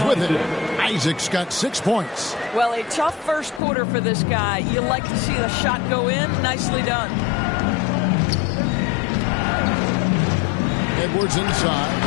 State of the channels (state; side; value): drops out; right; at 3.6 s